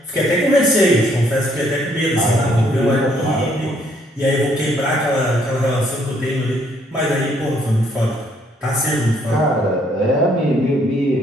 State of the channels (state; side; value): normal; both; correlation 0.67